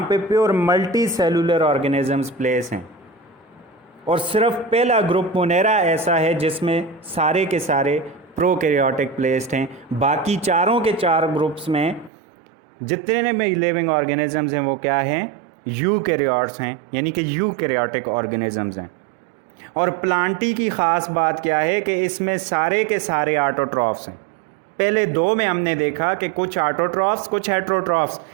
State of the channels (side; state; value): left; drops out; at 12.1 s